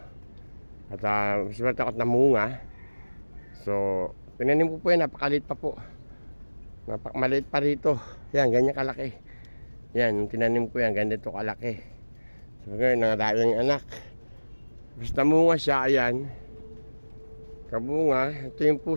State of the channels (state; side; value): inverted; both; correlation -1.00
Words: At swerte ako at namunga. So tinanim ko po yan, napakalit pa po. Maliit pa rito. Yan, ganyan kalaki. Yan, tinanim ko yan, ganito kalaki. So ngayon, nangadami yung anak. Basta namunga siya, ayan. Kabunga, ito yung